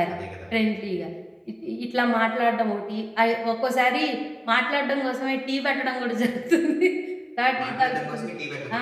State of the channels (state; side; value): identical; both; correlation 1.00